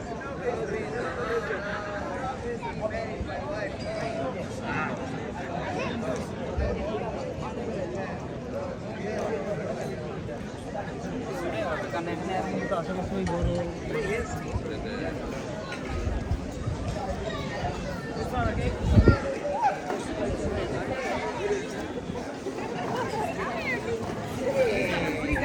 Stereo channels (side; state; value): both; identical; correlation 1.00